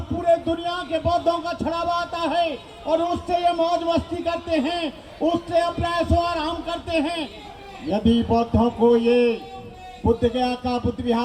पूरे दुनिया के बौद्धों का छड़ावा आता है और उससे ये मौज मस्ती करते हैं, उससे अपना ऐशो आराम करते हैं। यदि बौद्धों को ये बुद्ध गया का बुद्ध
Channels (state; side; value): identical; both; correlation 1.00